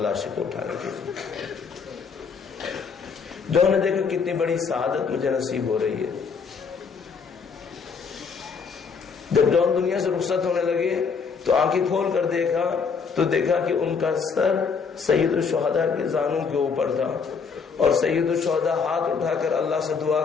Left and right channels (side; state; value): right; quieter; 5.6 dB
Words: کو اٹھانے کے لیے. جون نے دیکھا کتنی بڑی سعادت مجھے نصیب ہو رہی ہے. جب جون دنیا سے رخصت ہونے لگے تو آنکھیں کھول کر دیکھا تو دیکھا کہ ان کا سر سید الشہداء کے زانوں کے اوپر تھا اور سید الشہداء ہاتھ اٹھا کر اللہ سے دعا